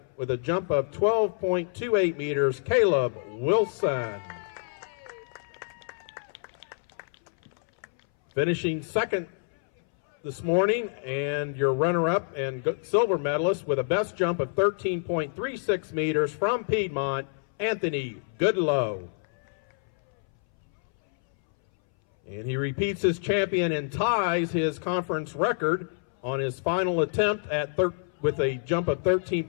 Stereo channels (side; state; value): right; silent; 60 dB below the other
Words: with a jump of 12.28 meters, Caleb Wilson. Finishing second this morning, and your runner-up and silver medalist with a best jump of 13.36 meters from Piedmont, Anthony Goodlow. And he repeats his champion and ties his conference record on his final attempt at with a jump of